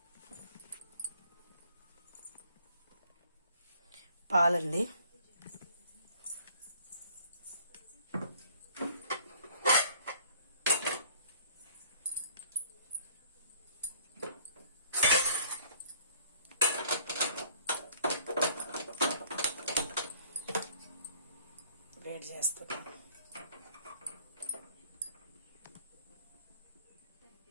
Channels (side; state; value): both; inverted; correlation -0.56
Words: పాలండి. వేడి చేస్తున్నా.